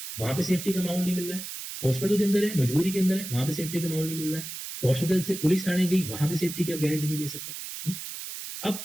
वहां पे सेफ्टी का माहौल नहीं मिल रहा है, हॉस्पिटल के अंदर है, मजबूरी के अंदर है, वहां पे सेफ्टी का माहौल नहीं मिल रहा है, हॉस्पिटल से पुलिस थाने गई, वहां पे सेफ्टी की आप गारंटी नहीं ले सकते।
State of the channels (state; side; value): noise; right; hiss, 8 dB below the sound